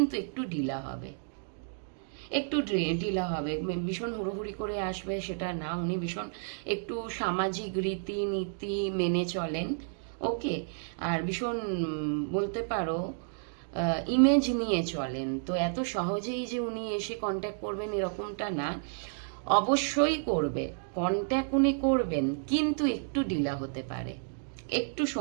একটু ঢিলা হবে, একটু ঢিলা হবে। ভীষণ হুড়োহুড়ি করে আসবে সেটা না, উনি ভীষণ একটু সামাজিক রীতিনীতি মেনে চলেন। ওকে, আর ভীষণ বলতে পারো ইমেজ নিয়ে চলেন। তো এত সহজেই যে উনি এসে কন্ট্যাক্ট করবেন এরকমটা না, অবশ্যই করবে কন্ট্যাক্ট, উনি করবেন, কিন্তু একটু ঢিলা হতে পারে, একটু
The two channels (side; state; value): left; silent; digital silence